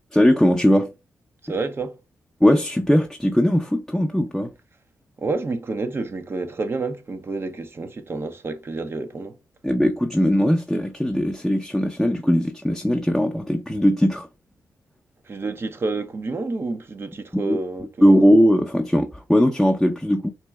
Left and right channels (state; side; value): normal; both; correlation 0.95